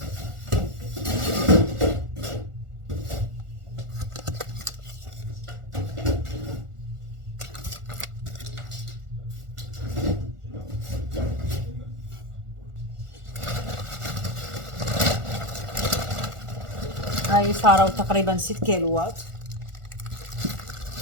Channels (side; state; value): left; late; 1.4 ms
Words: هاي صاروا تقريبا 6 كيلوات،